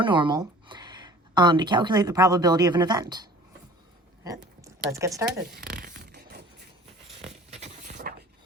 normal, to calculate the probability of an event. Right, let's get started.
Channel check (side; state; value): both; normal; correlation 0.46